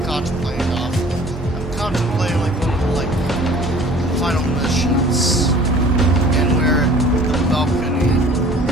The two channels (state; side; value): normal; both; correlation 0.50